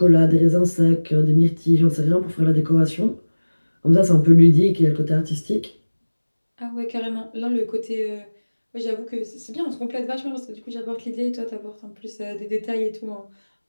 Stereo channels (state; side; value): inverted; both; correlation -1.00